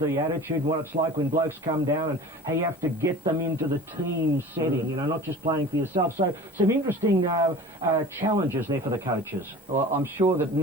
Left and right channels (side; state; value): both; normal; correlation 0.40